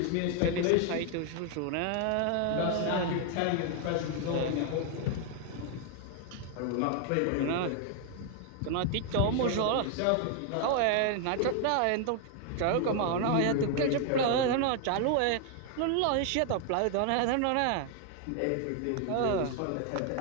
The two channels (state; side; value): different; both; correlation 0.00